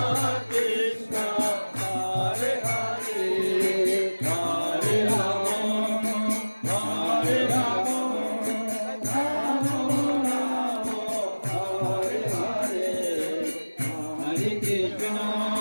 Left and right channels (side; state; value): both; inverted; correlation -1.00